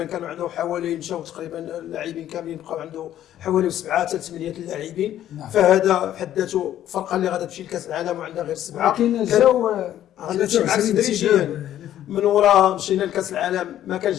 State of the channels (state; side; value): quieter; right; 11.8 dB